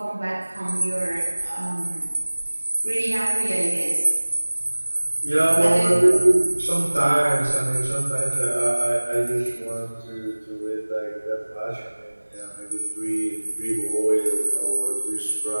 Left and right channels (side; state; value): both; inverted; correlation -1.00